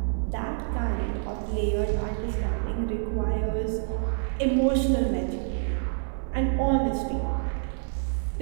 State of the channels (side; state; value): left; silent; digital silence